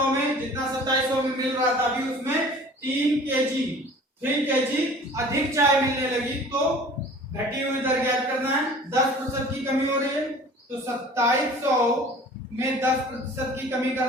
में, जितना 2700 में मिल रहा था अभी उसमें 3 केजी अधिक चाय मिलने लगी तो घटी हुई दर ज्ञात करना है। 10% की कमी हो रही है तो 2700 में 10% की कमी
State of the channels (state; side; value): normal; both; correlation 0.46